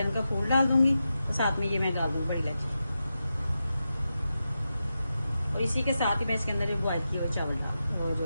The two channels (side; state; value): both; inverted; correlation -0.90